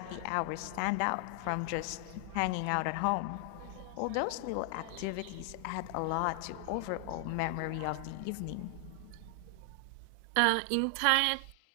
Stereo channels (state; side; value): different; both; correlation 0.00